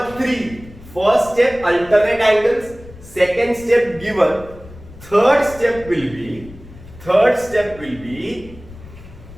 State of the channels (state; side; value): noise; left; rumble, 18 dB below the sound